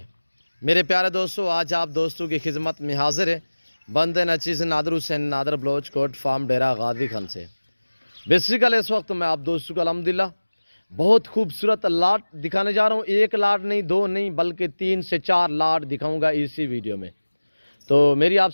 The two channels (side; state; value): both; inverted; correlation -1.00